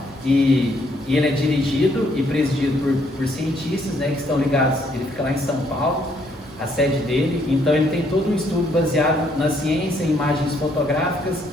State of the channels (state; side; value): normal; both; correlation 0.69